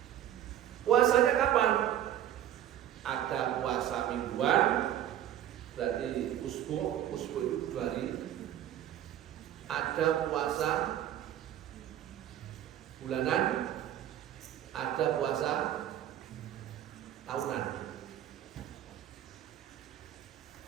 Puasanya kapan? Ada puasa mingguan, berarti usbu itu 2 hari. Ada puasa bulanan, ada puasa tahunan.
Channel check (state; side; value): quieter; left; 11.4 dB